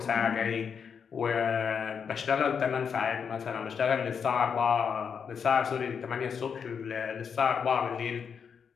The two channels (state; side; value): quieter; right; 6.7 dB